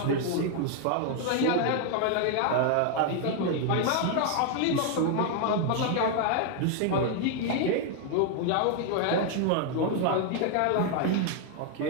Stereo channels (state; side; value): different; both; correlation 0.00